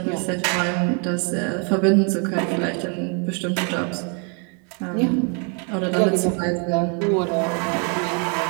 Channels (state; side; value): quieter; left; 37.6 dB